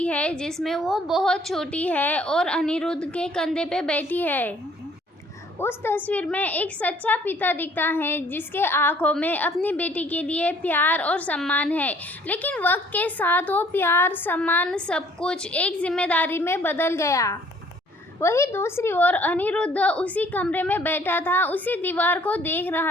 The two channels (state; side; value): normal; both; correlation 0.59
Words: है जिसमें वो बहुत छोटी है और अनिरुद्ध के कंधे पे बैठी है। उस तस्वीर में एक सच्चा पिता दिखता है जिसके आंखों में अपनी बेटी के लिए प्यार और सम्मान है, लेकिन वक्त के साथ वो प्यार, सम्मान, सब कुछ एक जिम्मेदारी में बदल गया। वही दूसरी ओर अनिरुद्ध उसी कमरे में बैठा था, उसी दीवार को देख